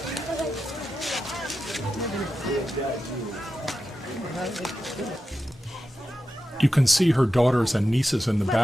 You can see her daughters and nieces in the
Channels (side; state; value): both; normal; correlation 0.90